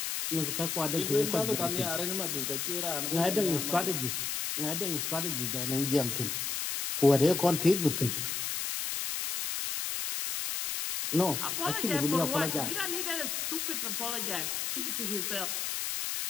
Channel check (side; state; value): left; noise; hiss, 2 dB below the sound